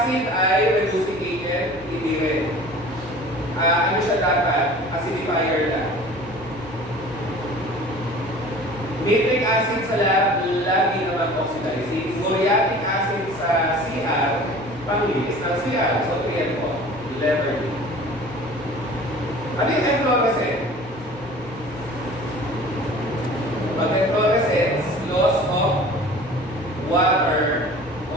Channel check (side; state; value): both; normal; correlation 0.44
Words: ay reducing agent, hindi rin. Ano siya dapat? Acidifier lang. Nitric acid sa lab, lagi naman oxidizing. Muriatic acid sa CR, panglinis ng CR. So, 3 and 4. Letter D. Ano yung efflorescent? Pag efflorescence, loss of